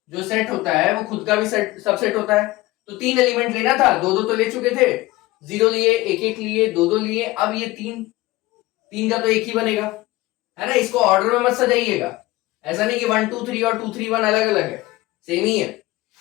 जो सेट होता है वो खुद का भी सबसेट होता है। तो 3 एलिमेंट लेना था, 2 तो ले चुके थे, 0 लिए, 1 लिए, 2 लिए। अब ये 3 का तो एक ही बनेगा, है ना। इसको ऑर्डर में मत सजाइएगा, ऐसा नहीं कि 1 2 3 और 2 3 1 अलग अलग है, सेम ही है।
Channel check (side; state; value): right; quieter; 19.1 dB